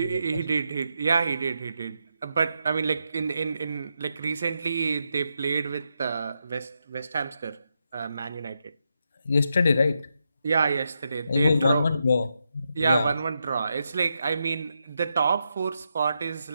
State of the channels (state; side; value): inverted; both; correlation -0.84